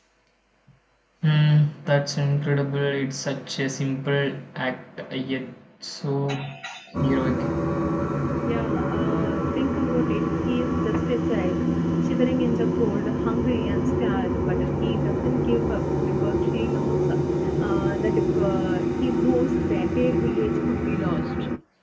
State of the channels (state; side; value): identical; both; correlation 1.00